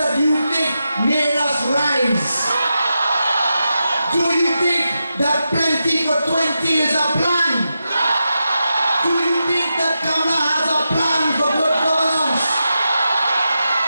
you think made us rise? Do you think that Plenty for 20 is a plan? Do you think that Kamala has a plan for good governance?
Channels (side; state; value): both; inverted; correlation -0.89